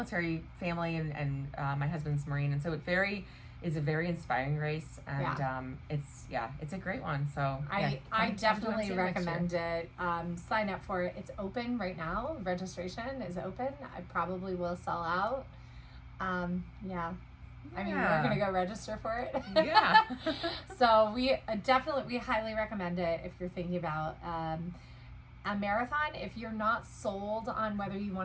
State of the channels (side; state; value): both; identical; correlation 1.00